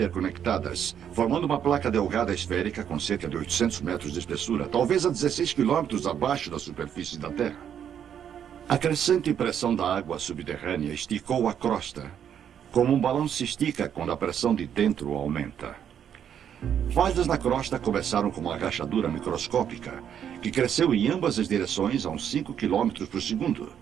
formando uma placa delgada esférica com cerca de 800 metros de espessura, talvez a 16 quilômetros abaixo da superfície da Terra. A crescente pressão da água subterrânea esticou a crosta, como um balão se estica quando a pressão de dentro aumenta. Falhas na crosta começaram com uma rachadura microscópica, que cresceu em ambas as direções a uns 5 km por segundo.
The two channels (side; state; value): left; quieter; 8.9 dB